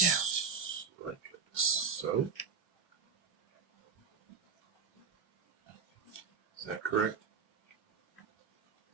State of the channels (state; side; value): quieter; left; 5.8 dB